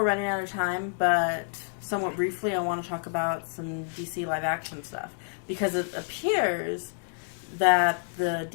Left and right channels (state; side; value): silent; right; digital silence